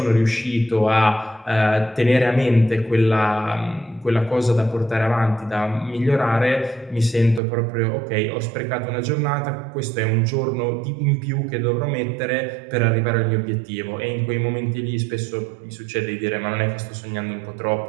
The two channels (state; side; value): drops out; left; at 7.4 s